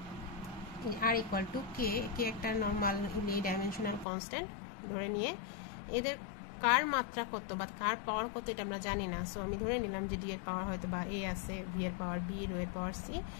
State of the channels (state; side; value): drops out; right; at 4.0 s